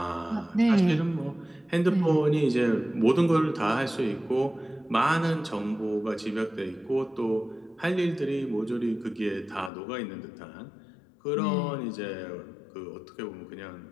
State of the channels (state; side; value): drops out; right; at 9.7 s